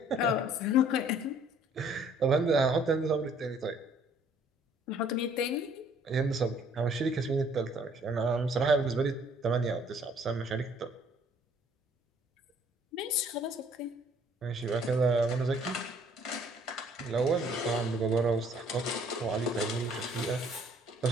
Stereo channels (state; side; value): normal; both; correlation 0.60